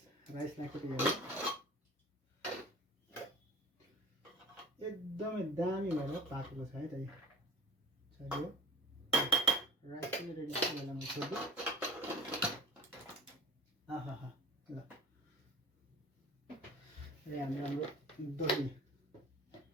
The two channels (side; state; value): both; normal; correlation 0.42